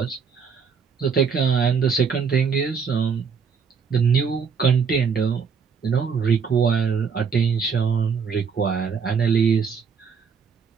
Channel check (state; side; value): quieter; left; 6.1 dB